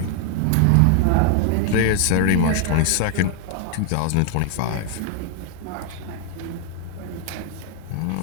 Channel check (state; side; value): different; both; correlation -0.01